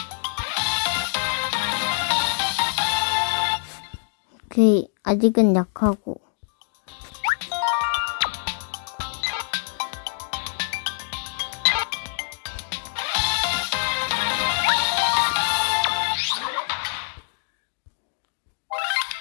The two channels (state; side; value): silent; right; digital silence